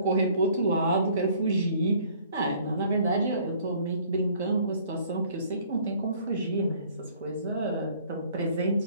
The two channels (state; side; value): inverted; both; correlation -0.57